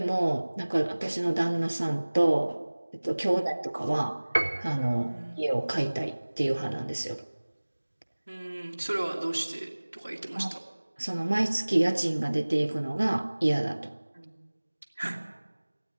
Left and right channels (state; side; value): inverted; both; correlation -1.00